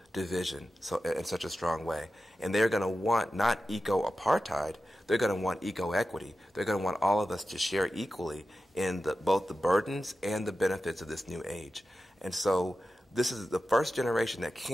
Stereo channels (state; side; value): normal; both; correlation 0.93